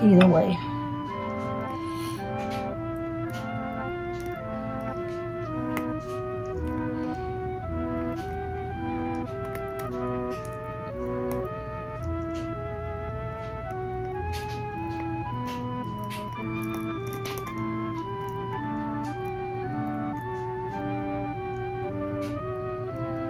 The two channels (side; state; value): both; identical; correlation 1.00